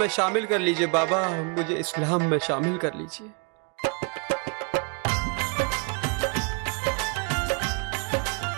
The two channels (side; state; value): left; quieter; 35.6 dB